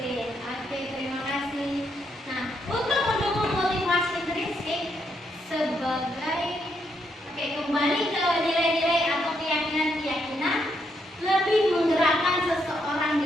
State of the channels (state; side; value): normal; both; correlation 0.78